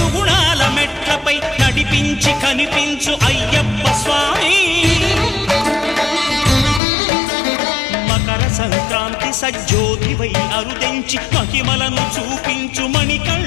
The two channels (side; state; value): right; drops out; at 6.8 s